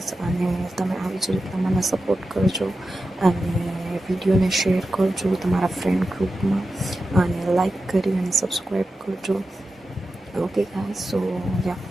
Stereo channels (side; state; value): both; normal; correlation 0.91